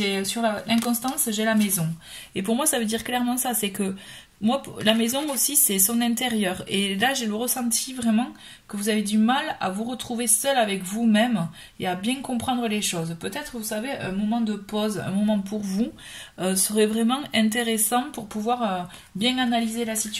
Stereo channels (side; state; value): both; identical; correlation 1.00